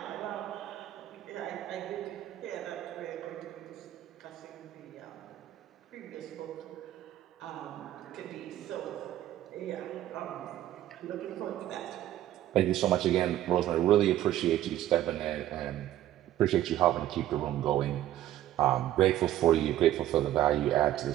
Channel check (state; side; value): quieter; left; 13.1 dB